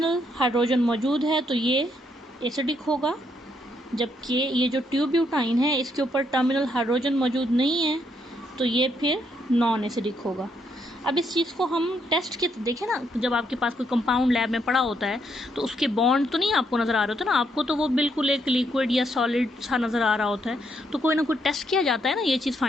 हाइड्रोजन मौजूद है तो ये एसिडिक होगा, जबकि ये जो 2 ब्यूटाइन है इसके ऊपर टर्मिनल हाइड्रोजन मौजूद नहीं है तो ये फिर नॉन एसिडिक होगा। अब इस चीज़ को हम टेस्ट के देखें ना, जब आपके पास कोई कंपाउंड लैब में पड़ा होता है तो उसके बॉन्ड तो नहीं आपको नज़र आ रहे होते ना, आपको तो वो बिल्कुल एक लिक्विड या सॉलिड सा नज़र आ रहा होता है। तो कोई ना कोई टेस्ट किया जाता है ना ये चीज़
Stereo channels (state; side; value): normal; both; correlation 0.75